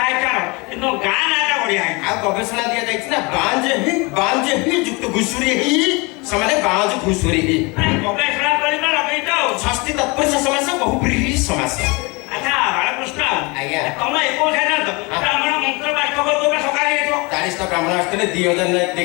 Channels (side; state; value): right; quieter; 27.2 dB